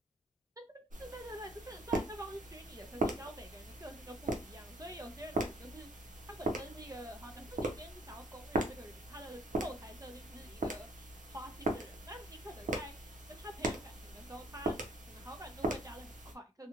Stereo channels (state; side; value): normal; both; correlation 0.63